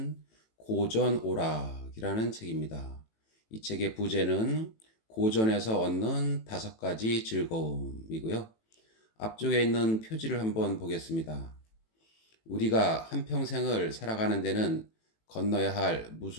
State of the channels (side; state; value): right; late; 18 ms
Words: 고전오락이라는 책입니다. 이 책의 부제는 고전에서 얻는 5가지 즐거움이고요. 앞쪽에 있는 표지를 한번 보겠습니다. 우리가 한평생을 살아가는 데는 건너야 할